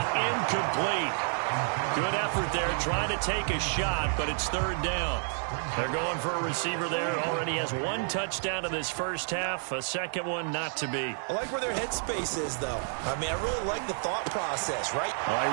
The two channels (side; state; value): left; silent; 58 dB below the other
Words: incomplete. Good effort there, trying to take a shot, but it's third down. They're going for a receiver there. Already has one touchdown in this first half, a second one not to be. I like where their headspace is, though. I mean, I really like the thought process, right? All